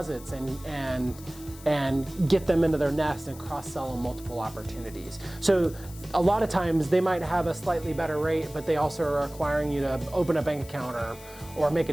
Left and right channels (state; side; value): noise; left; hiss, 19 dB below the sound